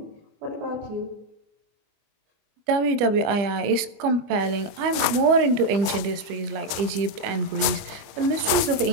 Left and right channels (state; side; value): late; left; 24 ms